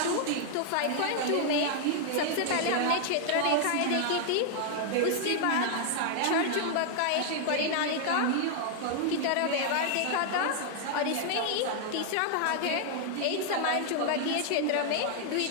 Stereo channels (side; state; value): both; different; correlation 0.00